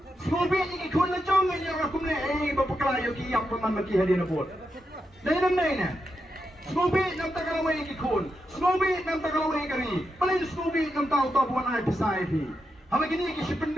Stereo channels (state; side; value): normal; both; correlation 0.85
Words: Snowy ni kun na jong ni ra kumne bapaklayo ki yak man maki hali na bot. Dai nam nai na. Snowy nam tagalaway ki kun. Snowy nam tagalaway kari. Palin Snowy nam tao to buan ay pisay pi. Hama gini ki